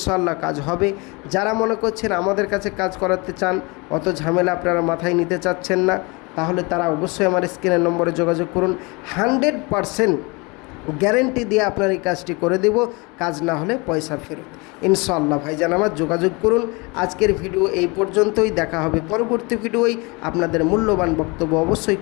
কাজ হবে। যারা মনে করছেন আমাদের কাছে কাজ করাতে চান, অত ঝামেলা আপনারা মাথায় নিতে চাচ্ছেন না, তাহলে তারা অবশ্যই আমার স্ক্রিনের নম্বরে যোগাযোগ করুন। 100% গ্যারেন্টি দিয়ে আপনার এই কাজটি করে দেব, কাজ না হলে পয়সা ফেরত ইনশাল্লাহ। ভাইজান আমার যোগাযোগ করুন। আজকের ভিডিও এই পর্যন্তই, দেখা হবে পরবর্তী ভিডিওয়। আপনাদের মূল্যবান বক্তব্য অবশ্যই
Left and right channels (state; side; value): quieter; right; 27.6 dB